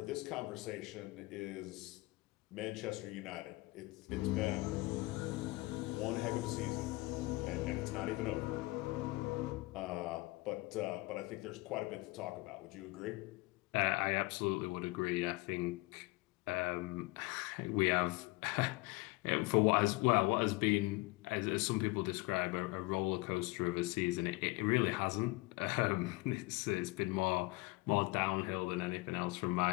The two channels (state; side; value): quieter; right; 23.1 dB